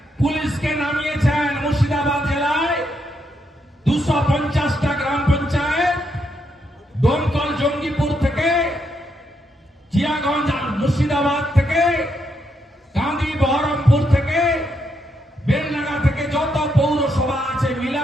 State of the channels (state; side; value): normal; both; correlation 0.79